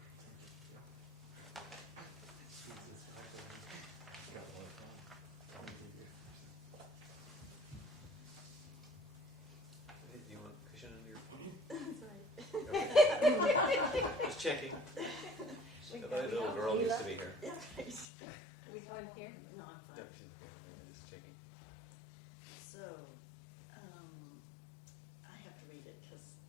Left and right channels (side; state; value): right; drops out; at 18.1 s